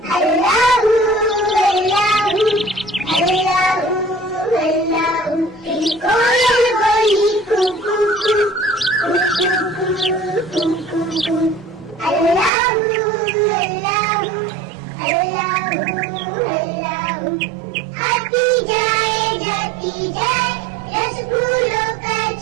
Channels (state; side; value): drops out; left; at 12.5 s